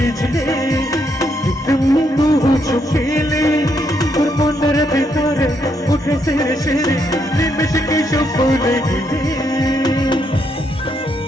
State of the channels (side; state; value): both; normal; correlation 0.76